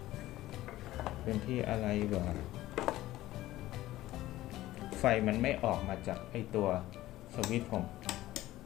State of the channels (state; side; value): quieter; right; 15.8 dB